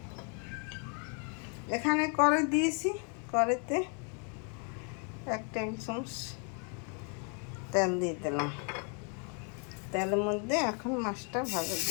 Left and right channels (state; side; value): quieter; right; 39.4 dB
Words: এখানে কড়াই দিয়েছি, কড়াইতে 1 টেবিল চামচ তেল দিয়ে দিলাম। তেলের মধ্যে এখন মাছটা ভাজা